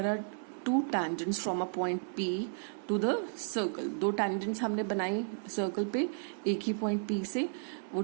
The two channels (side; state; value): left; silent; digital silence